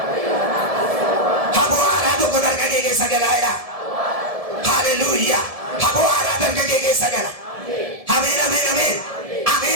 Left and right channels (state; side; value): late; left; 1.7 ms